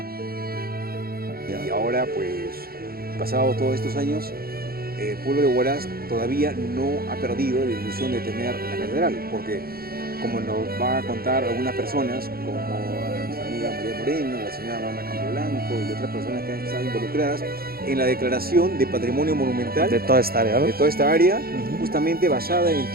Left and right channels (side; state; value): left; late; 0.44 ms